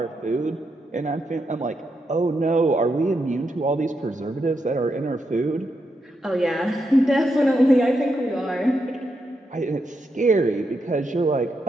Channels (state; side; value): normal; both; correlation 0.82